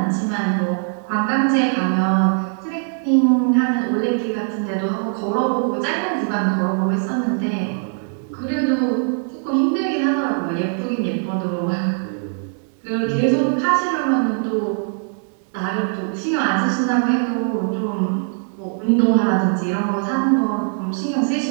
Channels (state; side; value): silent; left; 58 dB below the other